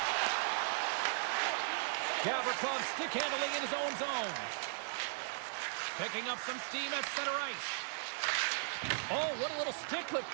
Gavrikov stick handling in his own zone. Picking up some steam at center ice. Oh, what a little stick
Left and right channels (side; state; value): left; silent; digital silence